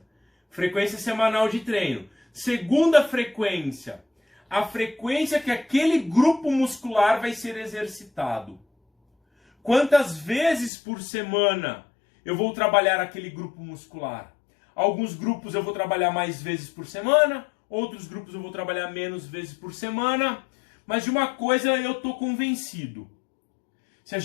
Frequência semanal de treino. Segunda frequência, a frequência que aquele grupo muscular vai ser exercitado. Quantas vezes por semana eu vou trabalhar aquele grupo muscular? Alguns grupos eu vou trabalhar mais vezes por semana, outros grupos eu vou trabalhar menos vezes por semana, mas de uma coisa eu estou convencido. Se a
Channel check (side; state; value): right; drops out; at 10.7 s